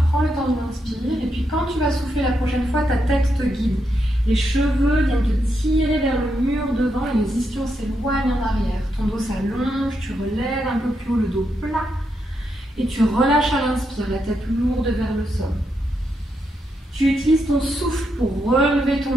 prends le temps de l'inspire et puis quand tu vas souffler la prochaine fois, ta tête te guide. Les cheveux viennent te tirer vers le mur devant et les ischions s'éloignent en arrière. Ton dos s'allonge, tu relèves un peu plus haut le dos plat et tu relâches à l'inspire, la tête lourde vers le sol. Tu utilises ton souffle pour relever ton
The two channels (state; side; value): normal; both; correlation 0.82